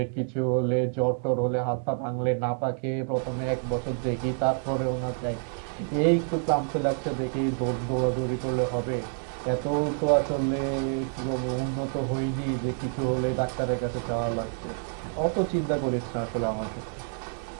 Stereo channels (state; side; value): silent; left; 59 dB below the other